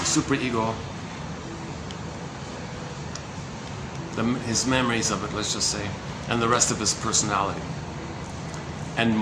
superego, his memories of it, let's just say, and the rest of his personality, and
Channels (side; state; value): both; identical; correlation 1.00